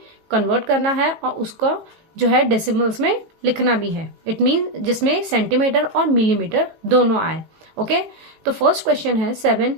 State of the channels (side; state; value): left; late; 18 ms